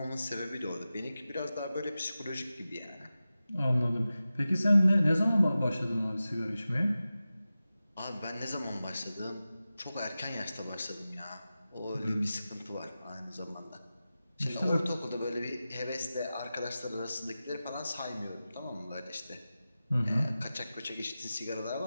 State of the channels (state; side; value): inverted; both; correlation -0.94